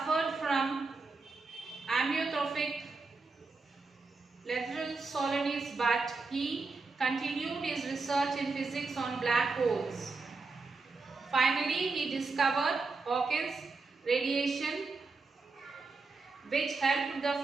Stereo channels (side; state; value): left; quieter; 4.0 dB